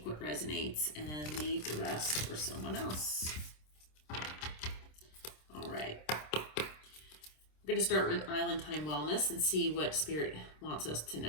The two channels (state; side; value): late; right; 26 ms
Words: what resonates and leave the rest for someone else. All right. We're going to start with Island Time Wellness and see what Spirit wants us to